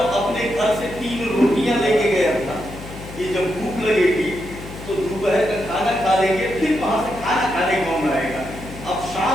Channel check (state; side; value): noise; left; hum, 13 dB below the sound